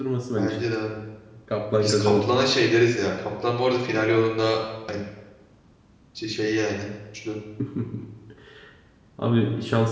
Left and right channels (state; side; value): identical; both; correlation 1.00